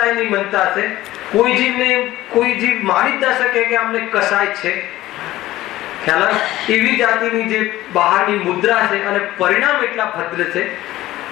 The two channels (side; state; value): right; quieter; 15.9 dB